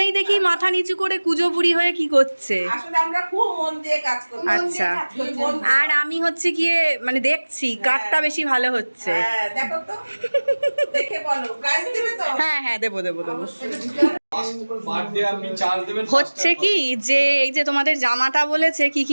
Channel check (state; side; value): inverted; both; correlation -1.00